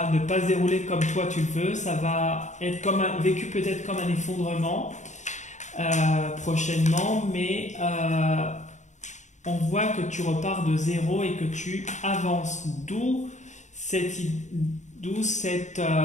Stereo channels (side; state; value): right; late; 0.34 ms